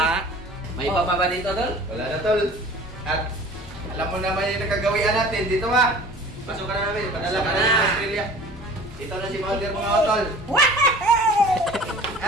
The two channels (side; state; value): both; normal; correlation 0.44